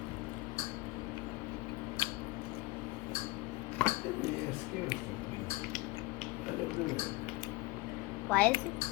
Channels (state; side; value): quieter; right; 21.6 dB